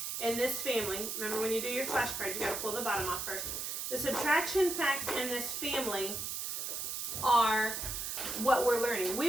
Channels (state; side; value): noise; right; hiss, 3 dB below the sound